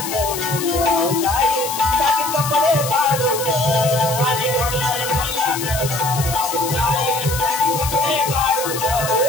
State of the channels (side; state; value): left; noise; hiss, 6 dB below the sound